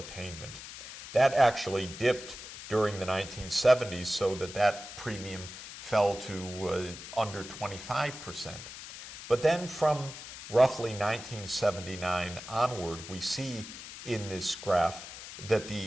That actually dipped during the 1970s so that premium fell to under 25%. But then from roughly 1979 onward, we see in this graph that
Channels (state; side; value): noise; left; hiss, 12 dB below the sound